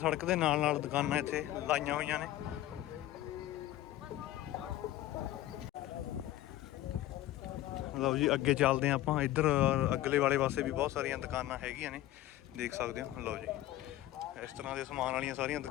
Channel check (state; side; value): quieter; right; 14.4 dB